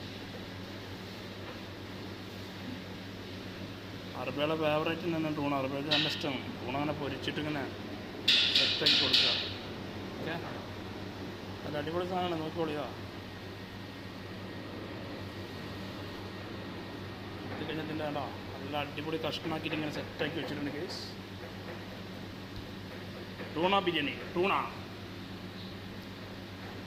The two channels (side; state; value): both; identical; correlation 1.00